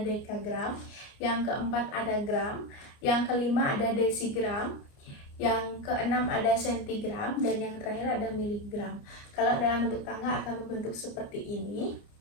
dekagram, yang keempat ada gram, yang kelima ada desigram, yang keenam ada sentigram, dan yang terakhir ada miligram. Kalau dalam bentuk tangga akan membentuk seperti ini.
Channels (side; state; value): right; late; 29 ms